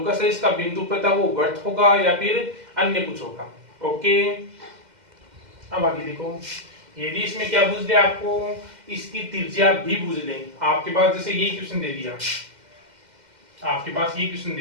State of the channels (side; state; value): left; late; 2.1 ms